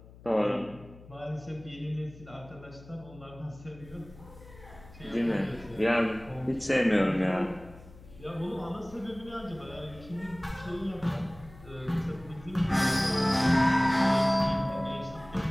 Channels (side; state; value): left; noise; hum, 20 dB below the sound